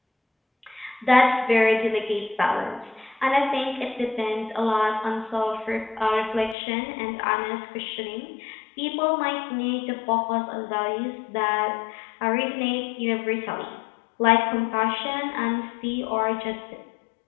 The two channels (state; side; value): drops out; right; at 6.6 s